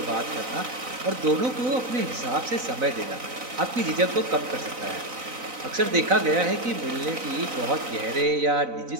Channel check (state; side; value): late; left; 4.0 ms